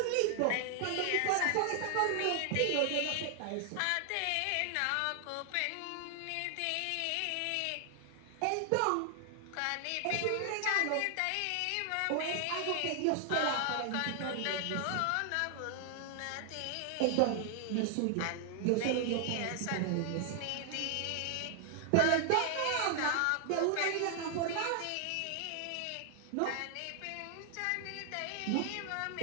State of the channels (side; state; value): both; different; correlation 0.00